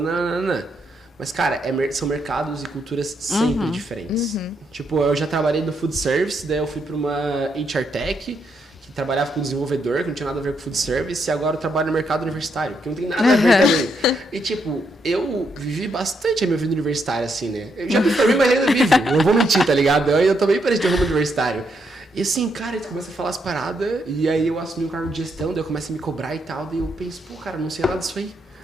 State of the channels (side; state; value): both; normal; correlation 0.78